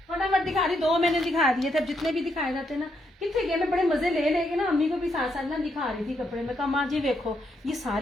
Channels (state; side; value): normal; both; correlation 0.78